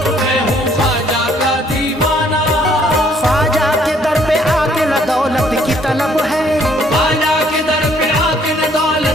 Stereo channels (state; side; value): normal; both; correlation 0.64